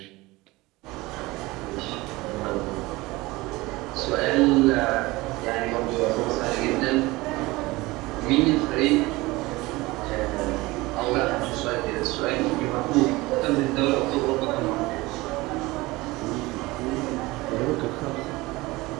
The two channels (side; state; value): left; quieter; 21.1 dB